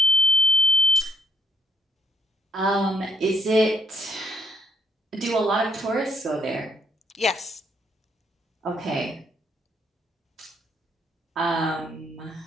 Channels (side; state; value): both; normal; correlation 0.70